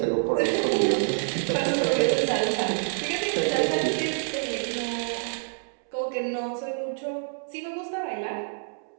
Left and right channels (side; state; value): left; silent; 60 dB below the other